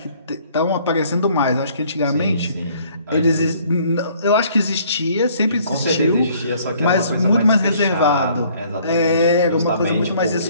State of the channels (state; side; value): inverted; both; correlation -0.59